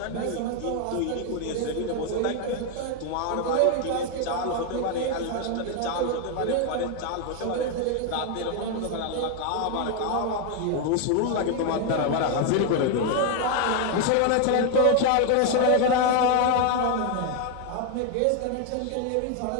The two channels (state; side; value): different; both; correlation 0.01